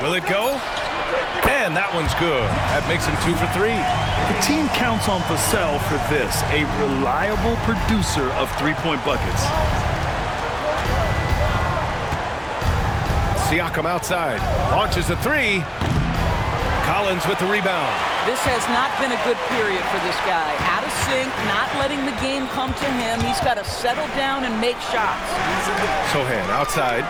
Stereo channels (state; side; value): identical; both; correlation 1.00